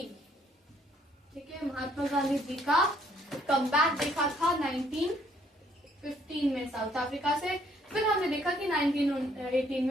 ठीक है, महात्मा गांधी जी का कमबैक देखा था 1915 में साउथ अफ्रीका से। फिर हमने देखा कि 1918 में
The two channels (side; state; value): both; normal; correlation 0.65